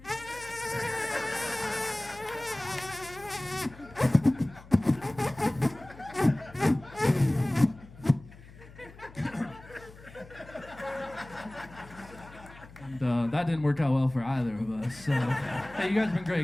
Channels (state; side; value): noise; left; hum, 20 dB below the sound